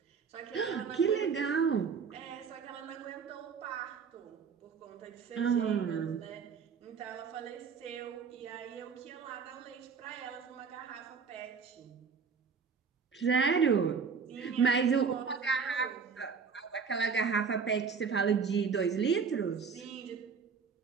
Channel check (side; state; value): left; quieter; 5.9 dB